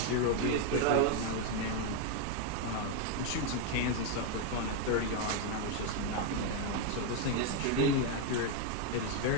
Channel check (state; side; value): different; both; correlation 0.01